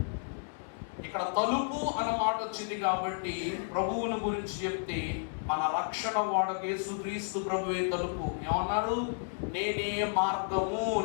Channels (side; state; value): right; silent; digital silence